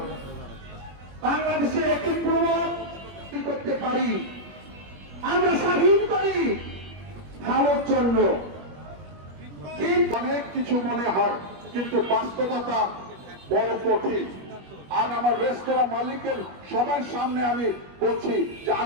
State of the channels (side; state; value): left; late; 21 ms